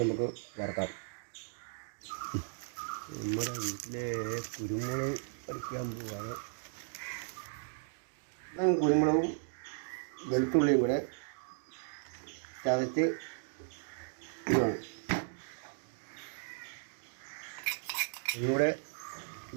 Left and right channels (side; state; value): left; silent; digital silence